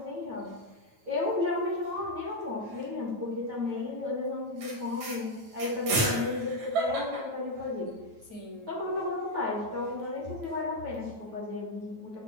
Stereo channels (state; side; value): late; left; 9.1 ms